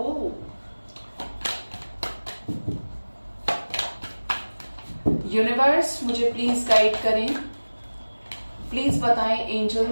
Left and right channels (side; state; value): both; inverted; correlation -1.00